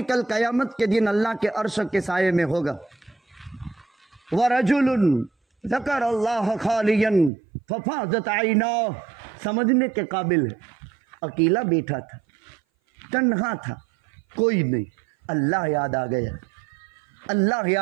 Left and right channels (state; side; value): drops out; left; at 7.3 s